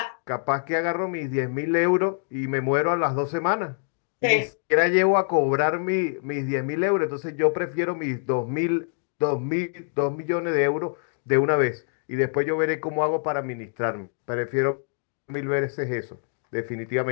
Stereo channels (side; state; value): right; silent; digital silence